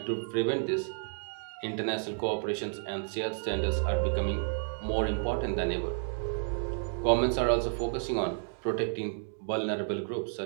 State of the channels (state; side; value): silent; left; digital silence